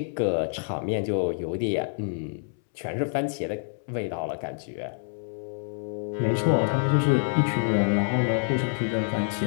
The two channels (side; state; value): right; silent; 60 dB below the other